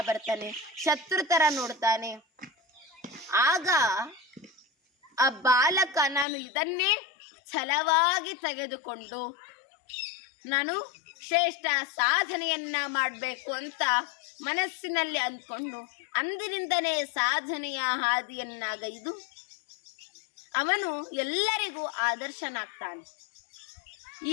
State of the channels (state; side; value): drops out; right; at 6.2 s